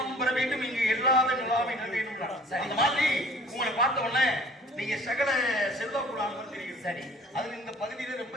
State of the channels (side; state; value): both; normal; correlation 0.51